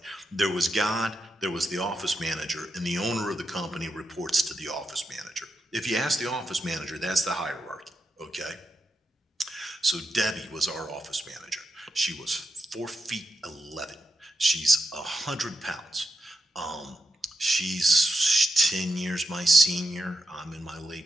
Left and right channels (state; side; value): normal; both; correlation 0.86